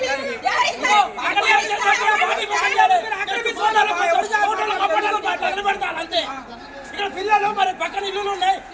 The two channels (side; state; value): both; identical; correlation 1.00